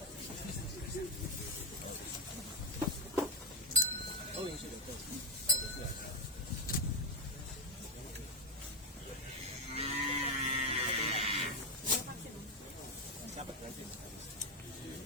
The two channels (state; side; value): normal; both; correlation 0.03